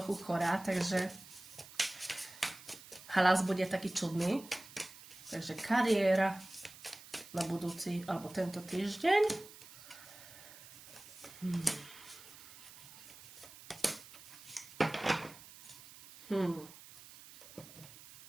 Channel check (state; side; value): noise; right; hiss, 18 dB below the sound